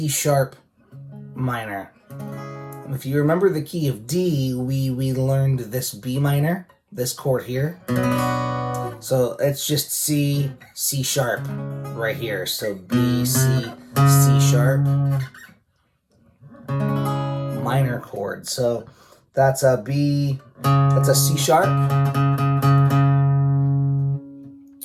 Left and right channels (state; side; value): identical; both; correlation 1.00